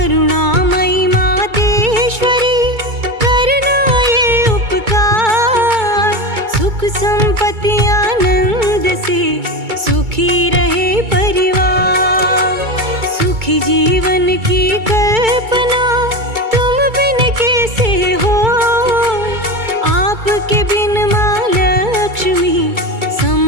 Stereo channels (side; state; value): left; late; 2.3 ms